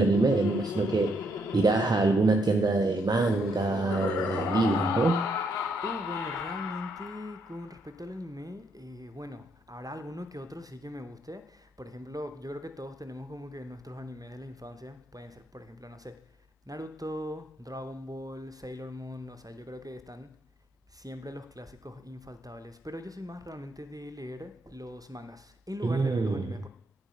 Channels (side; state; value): both; normal; correlation 0.74